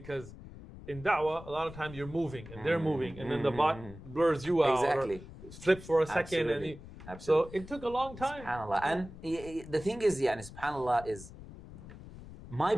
in da'wah, a lot of times you're moving and they're moving, and then the bot blurs you out or flips for a second. Absolutely. So it took a long time. SubhanAllah. And the thing is, SubhanAllah, is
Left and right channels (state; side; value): noise; left; rumble, 15 dB below the sound